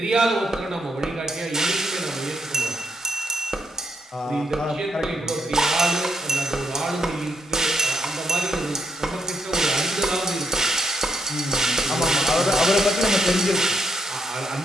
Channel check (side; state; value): both; normal; correlation 0.76